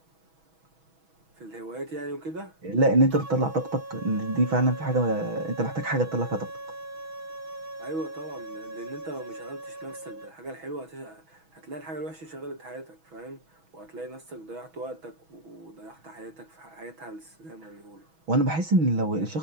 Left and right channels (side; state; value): left; late; 6.2 ms